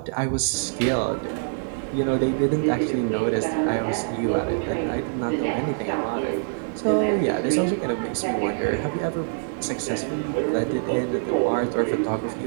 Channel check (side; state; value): left; silent; 62 dB below the other